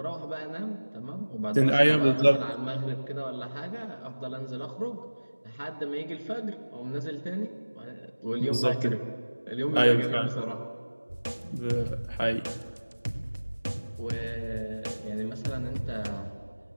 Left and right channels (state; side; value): inverted; both; correlation -1.00